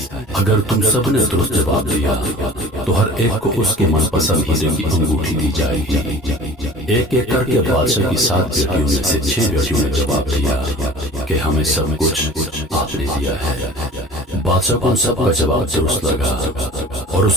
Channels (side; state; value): both; normal; correlation 0.42